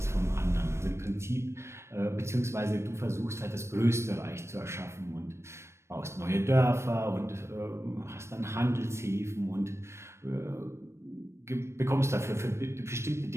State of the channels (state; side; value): late; left; 0.13 ms